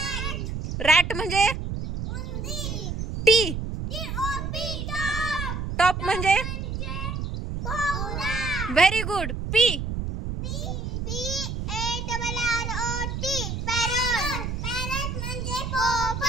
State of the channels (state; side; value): noise; right; rumble, 4 dB below the sound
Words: rat म्हणजे T टॉप म्हणजे व्हेरी गुड. P